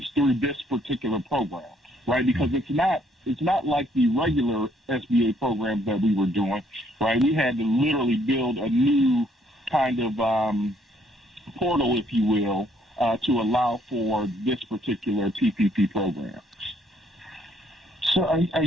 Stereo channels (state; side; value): normal; both; correlation 0.66